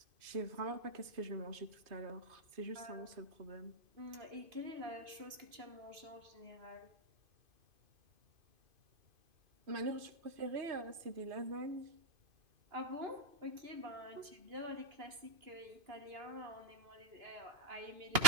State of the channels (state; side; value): late; left; 2.5 ms